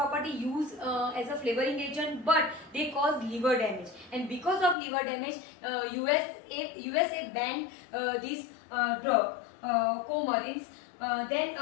used as a flavoring agent, but they cause liver damage, and because of liver damage USA banned these drug coumarins. Then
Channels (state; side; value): drops out; right; at 4.8 s